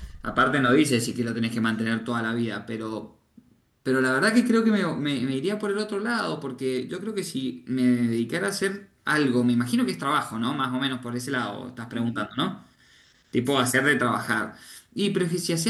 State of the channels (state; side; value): identical; both; correlation 1.00